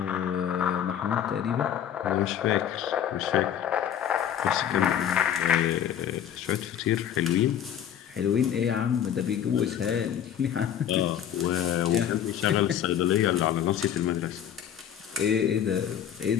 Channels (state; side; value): quieter; right; 9.6 dB